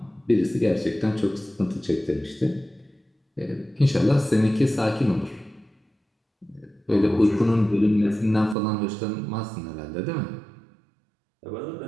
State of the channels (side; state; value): left; drops out; at 8.6 s